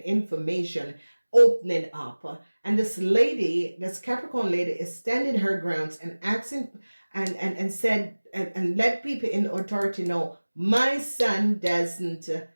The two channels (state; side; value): inverted; both; correlation -1.00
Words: information, opening up. And this lady, this Capricorn lady, is standing her grounds and asking and said and let people in authority know, my son doesn't